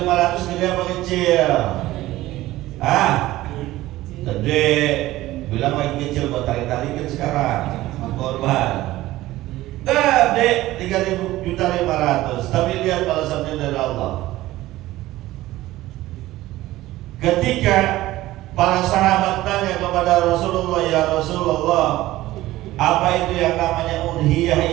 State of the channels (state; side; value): quieter; left; 16.5 dB